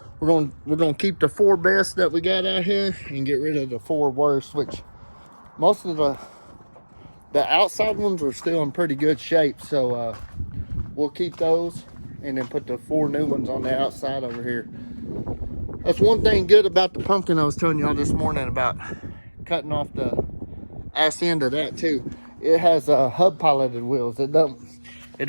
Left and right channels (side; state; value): both; inverted; correlation -1.00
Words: We're gonna keep the 4 best that we got out here and get rid of the 4 worst, which most of the outside ones are still in pretty good shape. So we'll keep those and then put the 4 new ones on the outside over here. That's one thing good about the pumpkin I was telling y'all this morning about cutting off the ass end of that too. It has hub piloted wheels. It don't